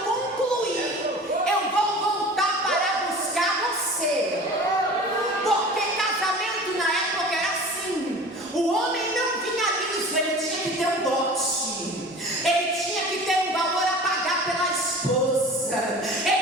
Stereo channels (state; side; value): normal; both; correlation 0.40